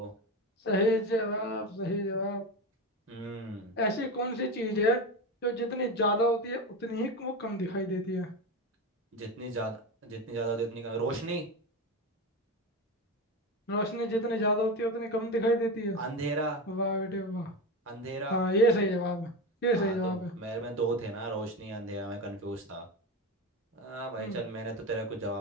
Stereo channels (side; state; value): both; normal; correlation 0.21